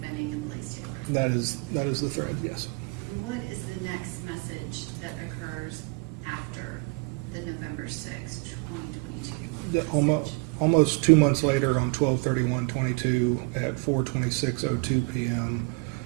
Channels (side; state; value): left; quieter; 31.0 dB